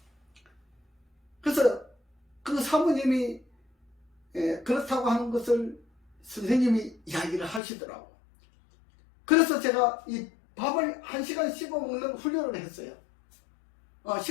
그래서 그 사모님이 그렇다고 하는 것을 선생님이 이야기를 하시더라고. 그래서 제가 이 밥을 1시간 씹어 먹는 훈련을 했어요.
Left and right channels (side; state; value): right; drops out; at 7.6 s